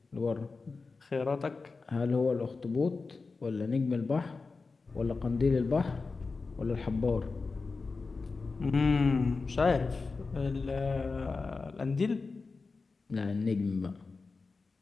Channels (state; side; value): quieter; right; 4.2 dB